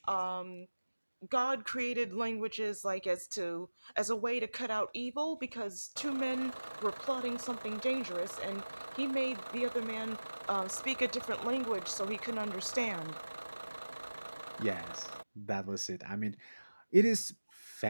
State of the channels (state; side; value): inverted; both; correlation -1.00